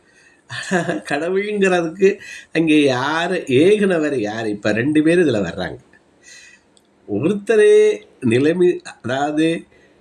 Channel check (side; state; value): both; identical; correlation 1.00